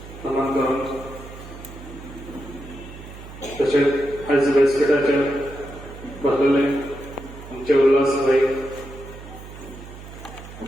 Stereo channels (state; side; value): noise; right; hum, 15 dB below the sound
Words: नमन करून तशेंच आयज व्यासपीठाचेर बसलेले आमचे उल्हास भाई